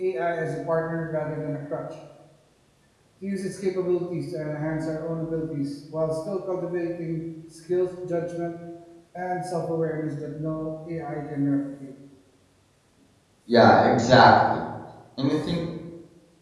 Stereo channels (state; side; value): identical; both; correlation 1.00